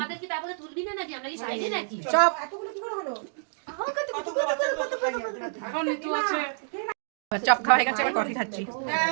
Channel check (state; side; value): silent; left; digital silence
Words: কি তারপরে তুলবি না নাকি? আমরা কি সাইডে নাকি? চপ। চপ খাওয়া হয়ে গেছে, এবার কফি খাচ্ছি।